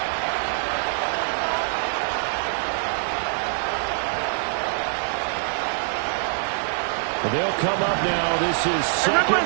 Well, they'll come up now. This is second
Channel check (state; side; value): silent; left; digital silence